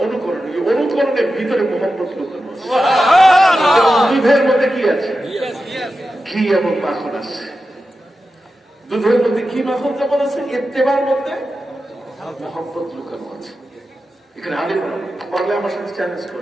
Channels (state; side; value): normal; both; correlation 0.91